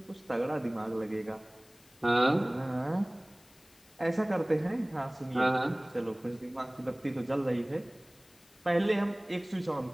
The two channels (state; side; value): noise; left; hiss, 27 dB below the sound